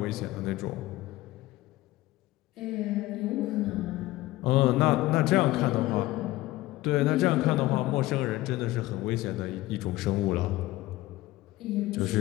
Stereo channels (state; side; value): quieter; right; 17.7 dB